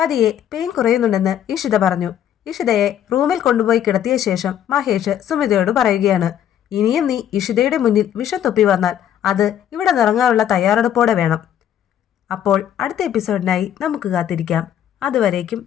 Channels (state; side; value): quieter; right; 10.3 dB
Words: പെയിൻ കുറയുന്നുണ്ടെന്ന് ഇഷിത പറഞ്ഞു. ഇഷിതയെ റൂമിൽ കൊണ്ടുപോയി കിടത്തിയ ശേഷം മഹേഷ് സുമിതയോട് പറയുകയാണ്. ഇനിയും നീ ഇഷിതയുടെ മുന്നിൽ വിഷം തൊപ്പി വന്നാൽ അത് ഇവിടെ നിറങ്ങാനുള്ള തയ്യാറെടുപ്പോടെ വേണം. അപ്പോൾ അടുത്ത എപ്പിസോഡിനായി നമുക്ക് കാത്തിരിക്കാം.